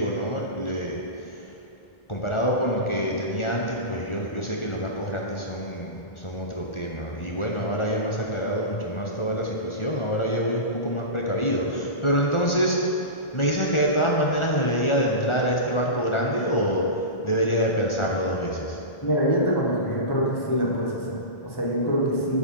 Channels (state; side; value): late; right; 1.4 ms